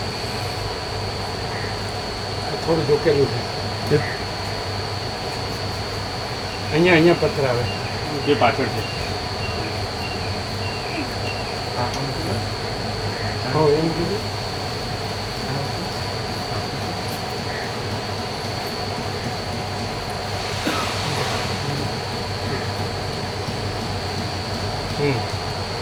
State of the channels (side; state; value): both; identical; correlation 1.00